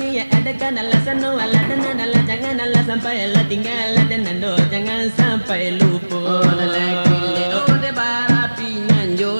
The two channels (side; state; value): both; inverted; correlation -1.00